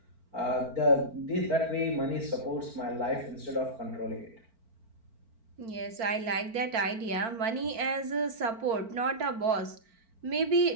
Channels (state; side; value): late; left; 4.4 ms